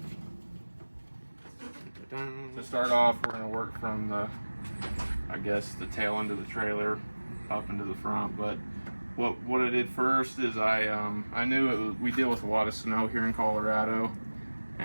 To start off, we're going to work from the tail end of the trailer up into the front. But what I did first is I knew we deal with a lot of snow here in Colorado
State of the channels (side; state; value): both; inverted; correlation -1.00